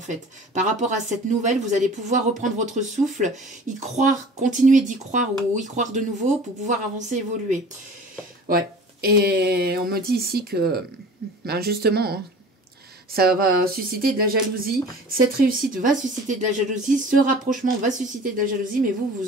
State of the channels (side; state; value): both; normal; correlation 0.43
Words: fait. Par rapport à cette nouvelle, vous allez pouvoir reprendre votre souffle, y croire, continuer d'y croire ou y croire de nouveau pour pouvoir avancer, évoluer. Ouais. Et on me dit ici que, justement, hein, ça va susciter de la jalousie. Cette réussite va susciter de la jalousie. Ce rapprochement va susciter de la jalousie, mais